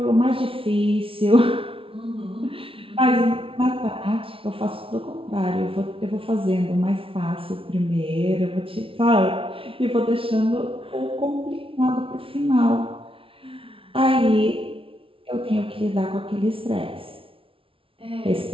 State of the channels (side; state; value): left; late; 0.26 ms